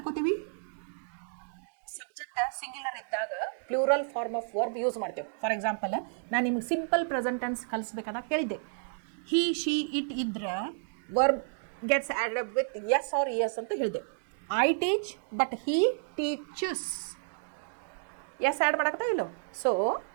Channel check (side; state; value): left; silent; digital silence